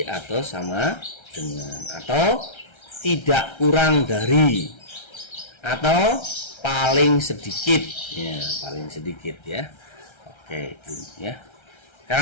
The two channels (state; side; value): late; right; 1.3 ms